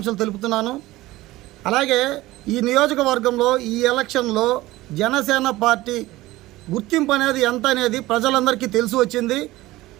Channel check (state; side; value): quieter; left; 17.9 dB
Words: తెలుపుతున్నాను. అలాగే ఈ నియోజకవర్గంలో ఈ ఎలక్షన్లో జనసేన పార్టీ గుర్తింపు అనేది ఎంత అనేది ప్రజలందరికీ తెలిసి వచ్చింది.